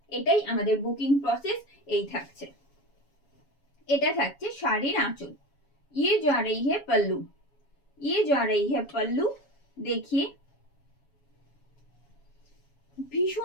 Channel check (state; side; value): late; right; 7.2 ms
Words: এটাই আমাদের বুকিং প্রসেস। এই থাকছে, এটা থাকছে শাড়ির আঁচল। ये जा रही है पल्लू। ये जा रही है पल्लू। देखिए